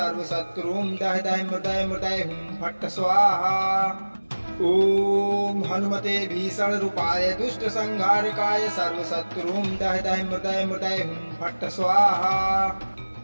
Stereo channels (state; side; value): inverted; both; correlation -1.00